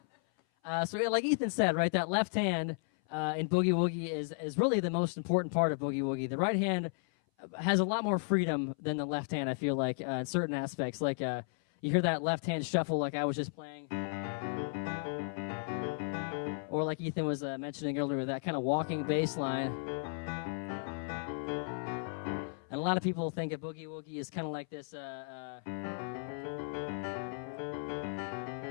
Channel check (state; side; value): silent; right; 55 dB below the other